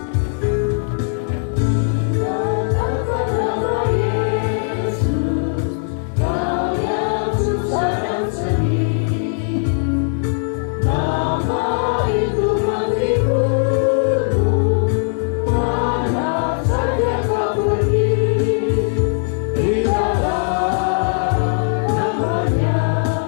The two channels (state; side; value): silent; right; digital silence